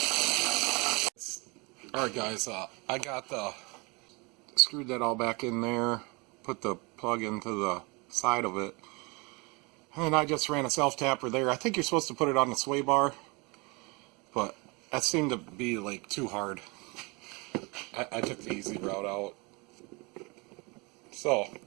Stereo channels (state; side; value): quieter; left; 27.9 dB